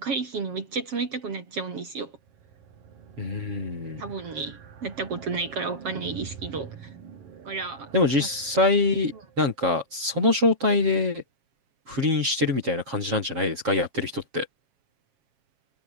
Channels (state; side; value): late; left; 7.4 ms